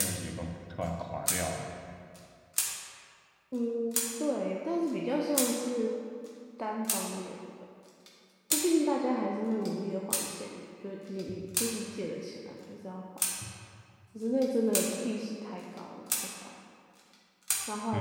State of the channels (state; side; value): identical; both; correlation 1.00